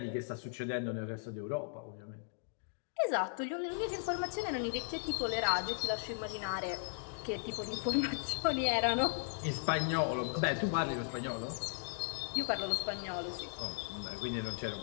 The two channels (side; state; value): right; silent; digital silence